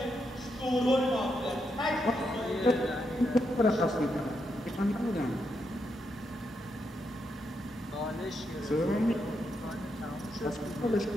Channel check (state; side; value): normal; both; correlation 0.82